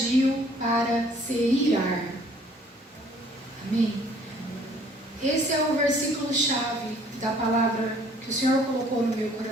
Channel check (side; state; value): both; normal; correlation 0.58